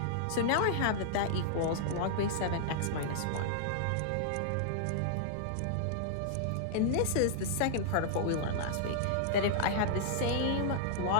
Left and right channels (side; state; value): both; different; correlation -0.01